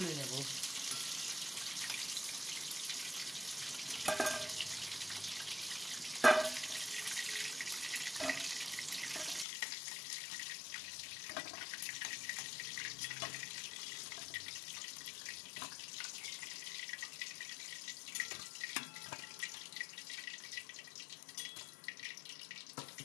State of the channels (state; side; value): drops out; right; at 9.5 s